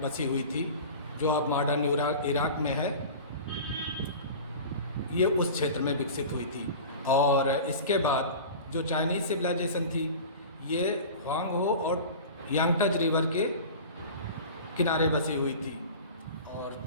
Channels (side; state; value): both; inverted; correlation -0.36